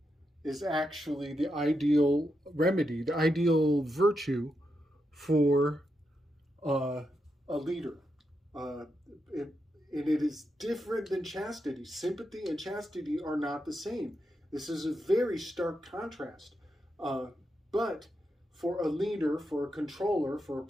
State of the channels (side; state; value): both; normal; correlation 0.85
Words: is actually the ideal remedy, the ideal virtue for a leader. It is different than chastity. Sympathy and chastity are not the same. This is a very stark contrast. But for a leader, for a controller, for a